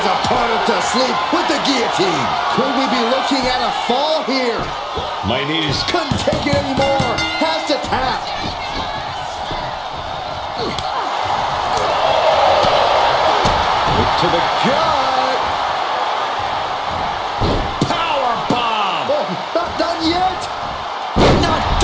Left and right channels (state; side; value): identical; both; correlation 1.00